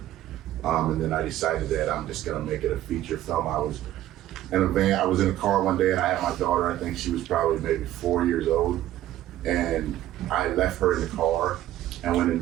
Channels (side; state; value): left; quieter; 13.5 dB